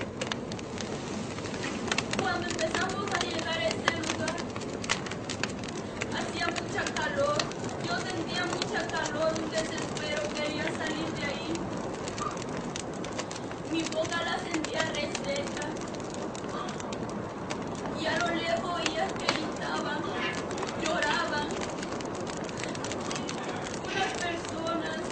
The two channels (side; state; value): both; identical; correlation 1.00